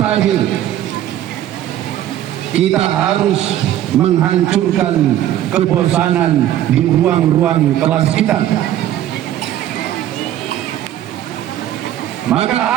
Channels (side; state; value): left; quieter; 12.2 dB